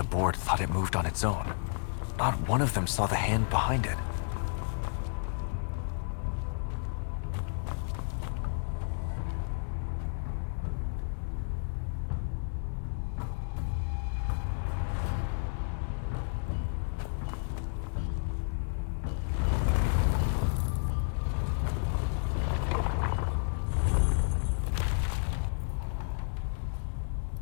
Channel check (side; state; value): right; silent; digital silence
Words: board thought it moved on its own. Not one of them saw the hand behind it.